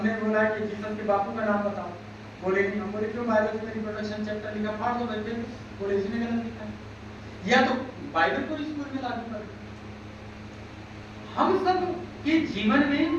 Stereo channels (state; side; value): identical; both; correlation 1.00